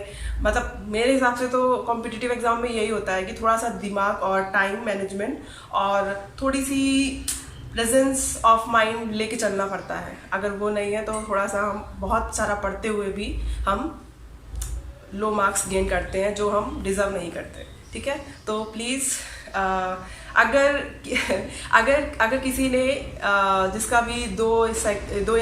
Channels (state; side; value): identical; both; correlation 1.00